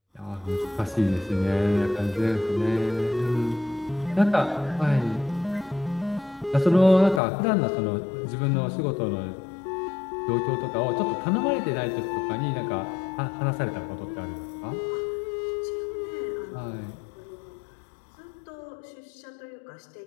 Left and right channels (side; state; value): right; drops out; at 7.2 s